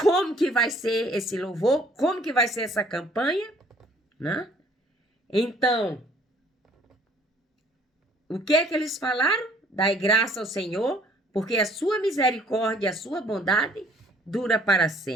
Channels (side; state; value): both; normal; correlation 0.59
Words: que vai ser esse louvor? Como que vai ser essa campanha? Né? Então, o que é que eles falaram? Dai graça ao Senhor, porque a sua misericórdia e a sua bondade dura para